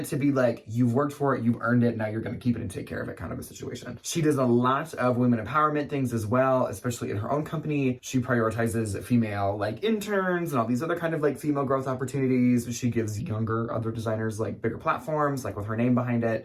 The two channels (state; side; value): identical; both; correlation 1.00